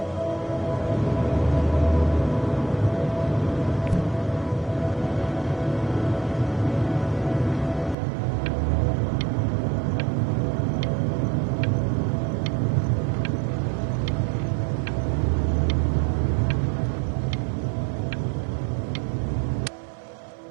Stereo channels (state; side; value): drops out; left; at 8.0 s